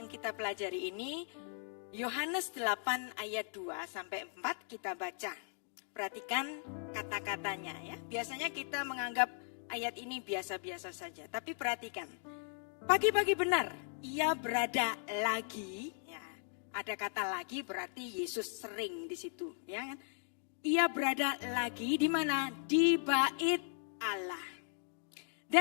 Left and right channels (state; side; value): silent; right; 53 dB below the other